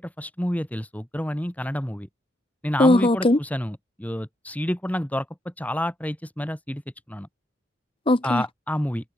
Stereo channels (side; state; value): both; normal; correlation 0.79